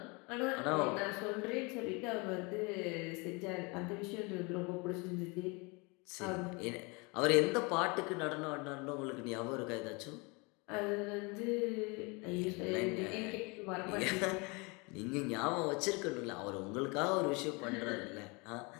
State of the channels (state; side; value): quieter; right; 28.7 dB